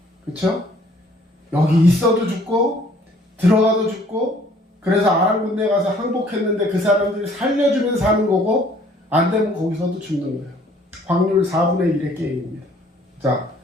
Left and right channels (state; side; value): normal; both; correlation 0.58